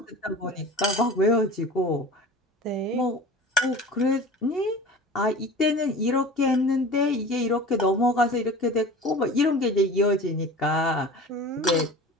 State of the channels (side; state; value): both; normal; correlation 0.38